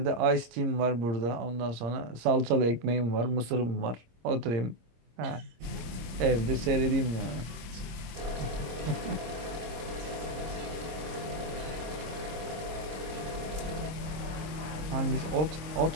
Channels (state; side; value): late; left; 26 ms